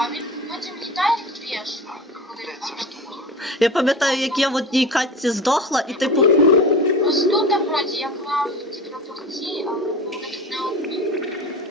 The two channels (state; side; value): normal; both; correlation 0.32